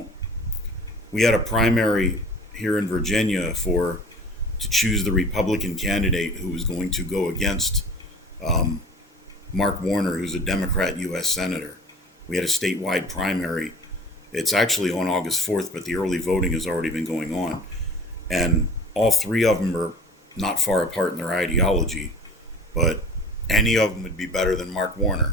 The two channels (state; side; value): normal; both; correlation 0.42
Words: We had a primary here in Virginia to choose the Republican candidate who was going to go against Mark Warner, who's a Democrat U.S. Senator. We had a statewide primary. It's actually on August 4th, but the early voting has already been going on. And all 3 of them are not far apart in their ideology, but any of them would be better than Mark